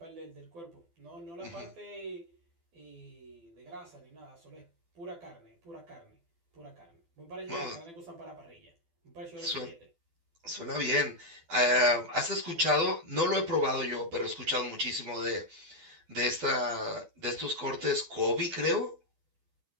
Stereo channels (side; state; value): left; late; 12 ms